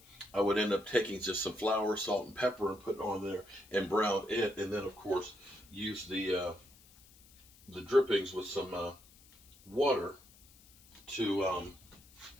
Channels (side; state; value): left; noise; hiss, 25 dB below the sound